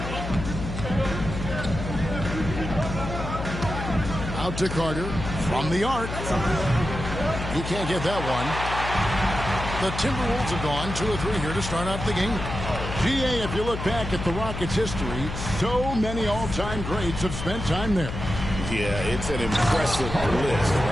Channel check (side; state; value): left; noise; hum, 6 dB below the sound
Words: Out to Carter from the arc. He can't get that one. The Timberwolves have gone 2 of 3 here to start out the game. GA, if you look back at the Rockets' history, so many all-time greats have spent time there. Yeah, it's an impressive list,